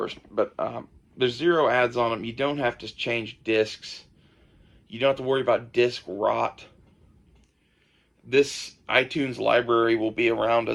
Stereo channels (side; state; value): both; identical; correlation 1.00